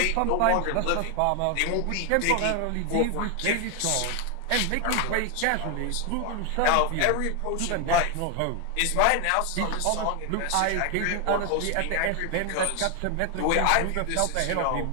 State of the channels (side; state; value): both; different; correlation 0.01